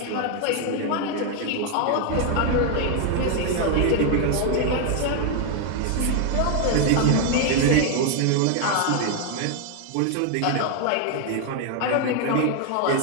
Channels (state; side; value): different; both; correlation 0.00